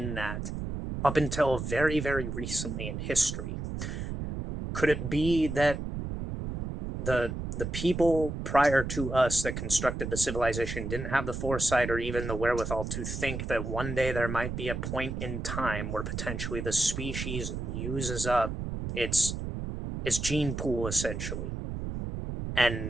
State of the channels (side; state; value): right; noise; rumble, 5 dB below the sound